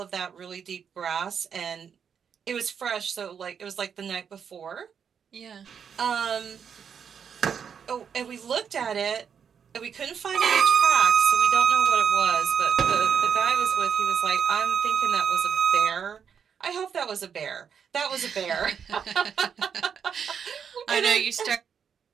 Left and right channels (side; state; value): left; quieter; 7.3 dB